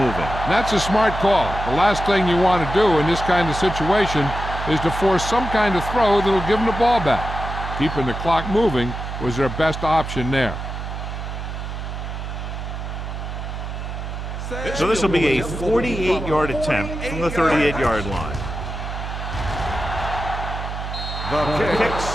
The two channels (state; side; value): noise; right; hum, 6 dB below the sound